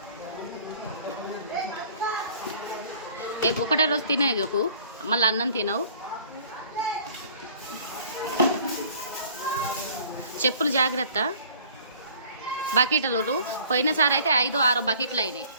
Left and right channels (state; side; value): inverted; both; correlation -0.52